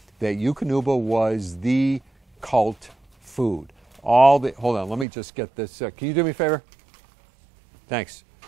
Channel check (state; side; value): drops out; left; at 5.1 s